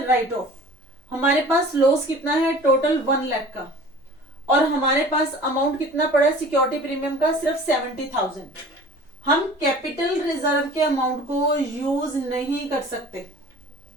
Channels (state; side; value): normal; both; correlation 0.44